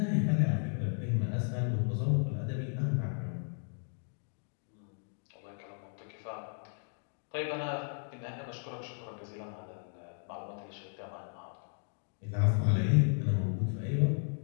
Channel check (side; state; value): right; silent; 55 dB below the other